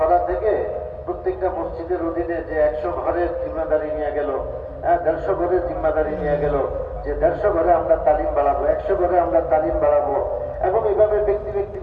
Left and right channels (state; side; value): identical; both; correlation 1.00